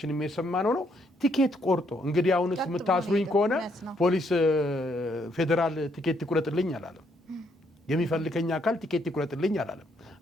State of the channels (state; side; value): normal; both; correlation 0.72